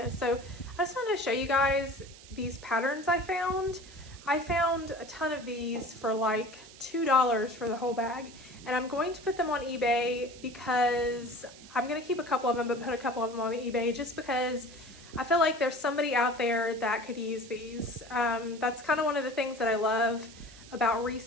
So I just wanted to show you guys these patterns I found. I found a ton of these for like $2 for the whole bag, and I'm going to put them on eBay because I'm going to keep a couple of them, but put a couple of them on eBay just because I feel like there's somebody out there that could use these. That's kind of one of the things that I love about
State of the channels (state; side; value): noise; right; hiss, 19 dB below the sound